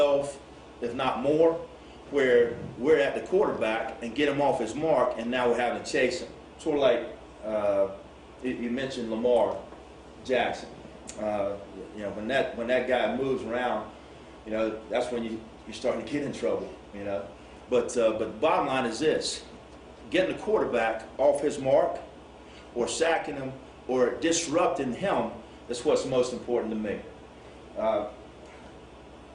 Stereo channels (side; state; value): both; identical; correlation 1.00